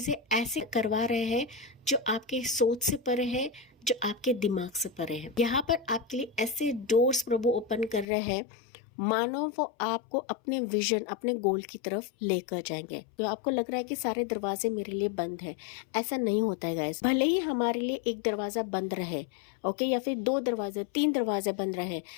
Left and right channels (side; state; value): right; drops out; at 8.1 s